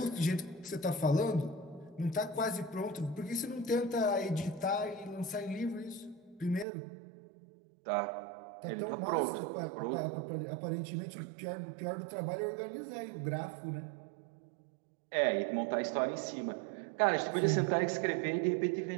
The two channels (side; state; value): left; drops out; at 6.7 s